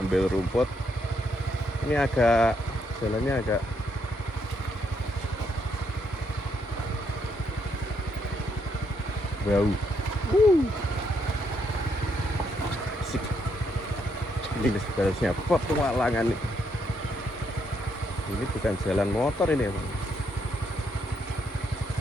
rumput. Ini agak jalannya agak bau. Asik. Ini sebenarnya petualangan nih. Ini bukan jalan motor ini ya, Bang.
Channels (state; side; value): normal; both; correlation 0.76